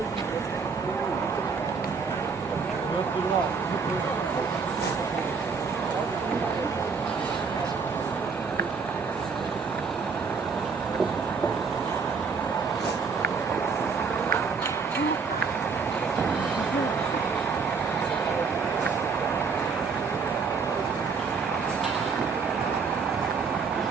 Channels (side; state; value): left; quieter; 5.2 dB